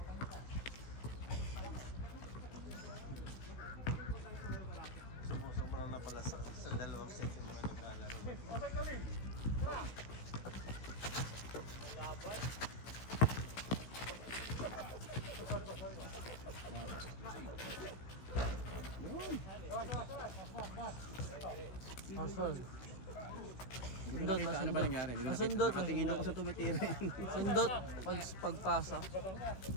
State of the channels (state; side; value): late; right; 16 ms